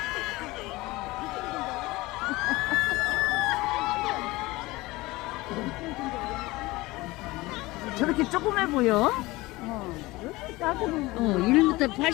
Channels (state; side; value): quieter; right; 20.6 dB